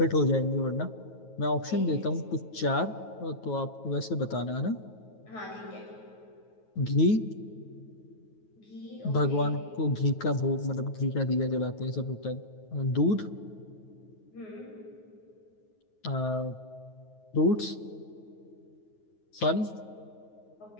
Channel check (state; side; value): late; right; 9.3 ms